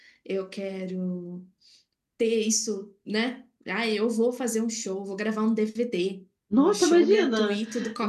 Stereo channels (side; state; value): both; identical; correlation 1.00